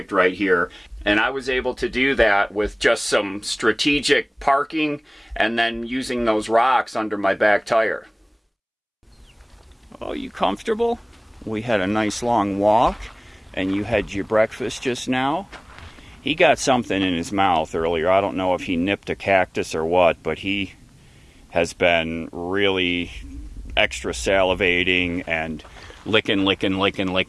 right here. And I was able to do that with just some strategic parking and then using those rocks under my back tire. Oh, you comfortable? We had a nice long walk, and you had your breakfast just now. He got something in his mouth earlier. I don't know if he nipped a cactus or what, but he has been really extra salivating and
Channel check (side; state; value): both; identical; correlation 1.00